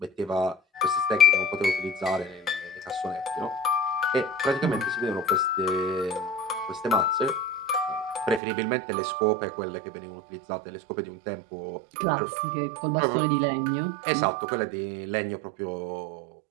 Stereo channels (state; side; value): drops out; left; at 8.4 s